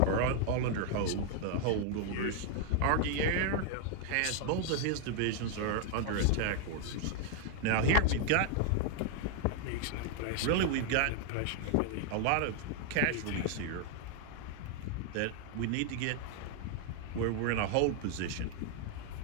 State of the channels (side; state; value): both; different; correlation 0.00